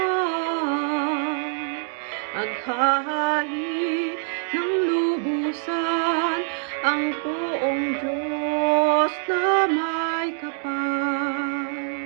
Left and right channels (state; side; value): silent; left; 59 dB below the other